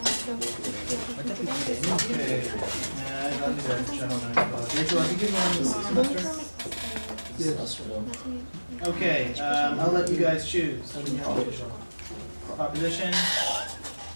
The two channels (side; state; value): both; inverted; correlation -1.00